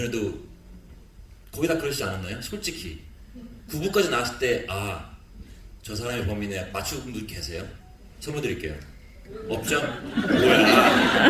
거의 다 그러시지 않았나요? 솔직히 9부까지 나왔을 때 저 사람이 범인이야 맞추는 분들 계세요? 선물 드릴게요. 없죠?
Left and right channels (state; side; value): identical; both; correlation 1.00